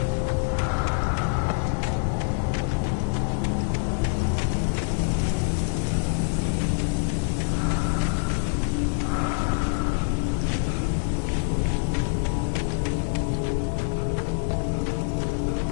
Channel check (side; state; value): right; silent; digital silence